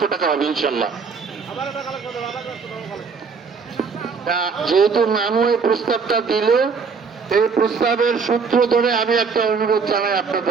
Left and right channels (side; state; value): left; quieter; 5.3 dB